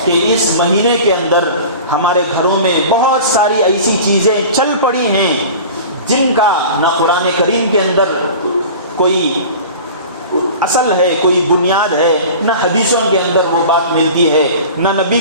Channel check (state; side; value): inverted; both; correlation -0.38